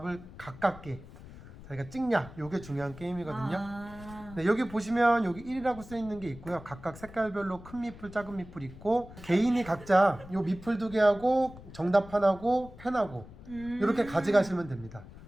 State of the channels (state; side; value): noise; left; rumble, 17 dB below the sound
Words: 가깝게 자기가 찍냐, 이게 중요한 게임이거든요. 네, 여기 보시면 여기 1이라고 써 있는 게 있고요. 각각 색깔별로 큰 미풀, 작은 미풀 있고 개인이 각자 요 미풀 2개하고 정답판하고 펜하고 이렇게 가져가시면 됩니다.